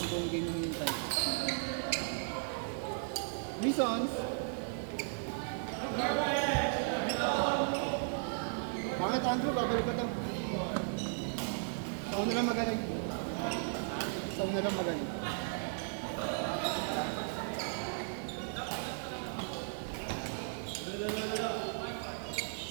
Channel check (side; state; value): left; silent; 54 dB below the other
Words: buong game yung hintay. Misons! Bakit Andrew? Babalik ko to. Sa una lang magaling. Sa una lang magaling.